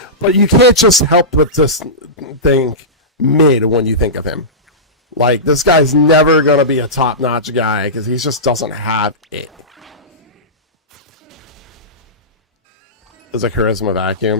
but you can't just help but just think mid when you think of him. Like, this guy's never going to be a top-notch guy, because he just doesn't have it. There's a charisma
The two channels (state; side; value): normal; both; correlation -0.18